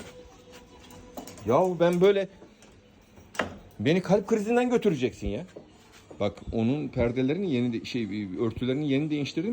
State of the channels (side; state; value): both; identical; correlation 1.00